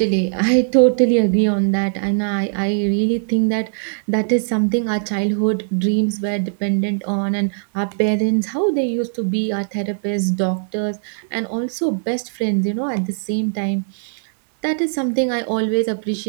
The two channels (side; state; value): left; silent; 62 dB below the other